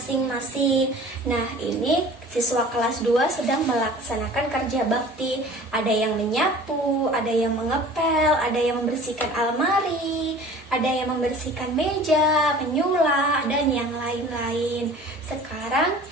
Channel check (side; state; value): both; normal; correlation 0.44